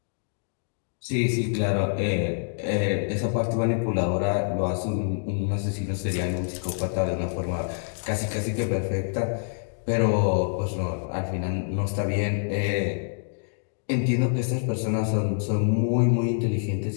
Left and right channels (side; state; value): right; silent; digital silence